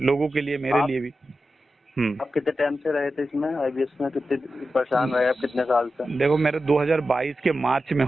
लोगों के लिए, मेरे आप लिए भी। हम्म। आप कितने टाइम से रहे थे इसमें, आईबीएस में कितने परेशान रहे आप, कितने साल से? देखो मेरा 2022 के मार्च में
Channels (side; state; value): both; normal; correlation 0.91